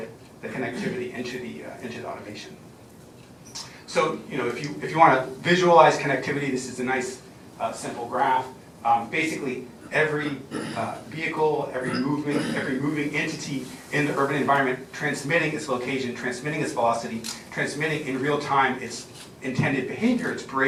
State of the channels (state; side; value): identical; both; correlation 1.00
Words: the connectivity into the automation. So, you know, if you want to visualize connectivity, this is a nice simple graph. Basically, every vehicle, every moving entity in the urban environment transmitting its location, transmitting its velocity, transmitting in real time its intended behavior, its